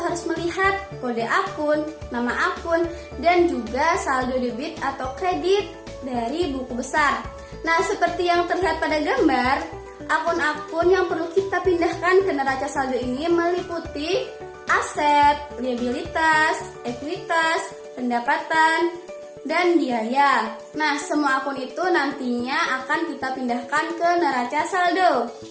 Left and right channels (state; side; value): identical; both; correlation 1.00